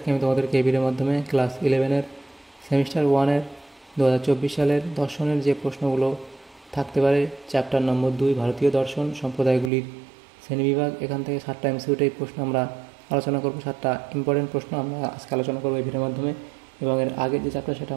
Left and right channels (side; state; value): left; drops out; at 9.7 s